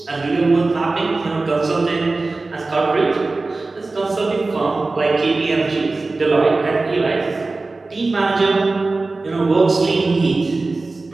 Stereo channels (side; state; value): left; quieter; 3.5 dB